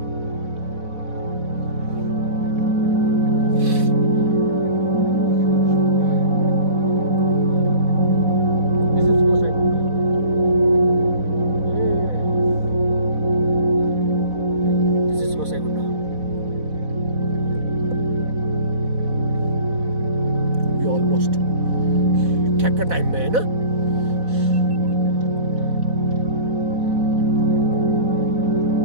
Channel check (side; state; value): left; late; 4.1 ms